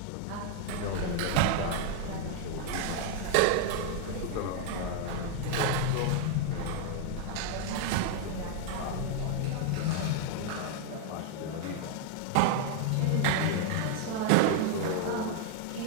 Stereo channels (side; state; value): both; different; correlation 0.00